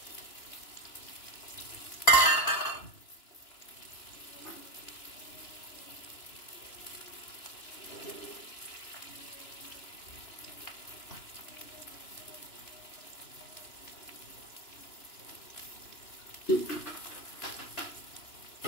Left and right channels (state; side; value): late; right; 2.9 ms